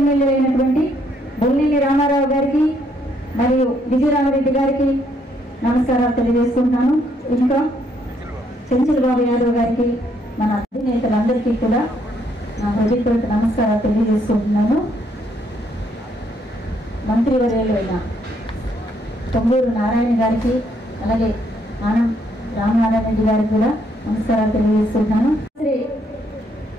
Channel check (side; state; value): both; normal; correlation 0.71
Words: అయినటువంటి బొల్లినేని రామారావు గారికి మరియు విజయరామరెడ్డి గారికి నమస్కారాలు తెలియజేసుకుంటున్నాను. ఇంకా చెంచుల బాబు యాదవ్ గారికి, మన అధినేతలందరికీ కూడా నా హృదయపూర్వక నమస్కారాలు తెలియజేసుకుంటున్నాను. మంత్రివర్యులు అయిన పొంగూరు నారాయణ గారికి, అలాగే ఆనం రామనారాయణ రెడ్డి గారికి కూడా నమస్కారాలు తెలియజేస్తున్నాను.